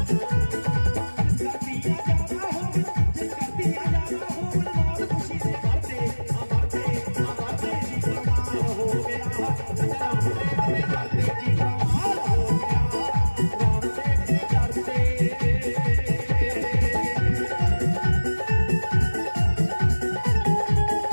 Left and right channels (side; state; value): both; inverted; correlation -1.00